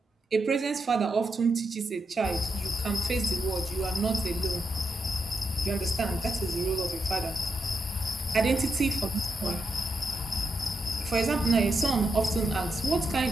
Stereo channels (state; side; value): normal; both; correlation 0.85